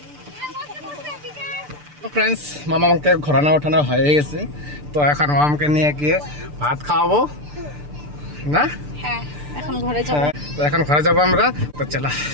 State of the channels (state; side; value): late; left; 6.8 ms